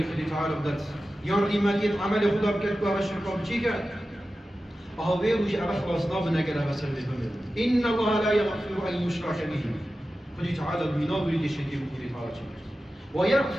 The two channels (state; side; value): normal; both; correlation 0.94